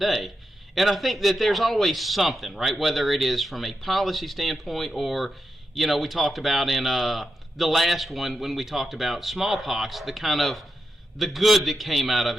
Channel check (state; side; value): normal; both; correlation 0.87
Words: And I think that there's always something, right? Whether it is from a policy standpoint or, we talked about in the last one when we talked about smallpox, the kind of the good that came out of